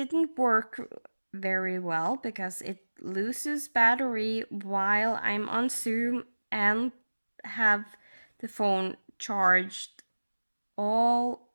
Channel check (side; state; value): both; inverted; correlation -1.00